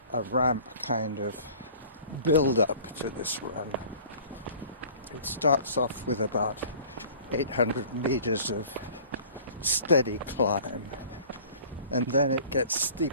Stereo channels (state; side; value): inverted; both; correlation -0.47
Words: a ramp kind of build-up to this run. It starts off with about 800 meters of steady climb, and then it gets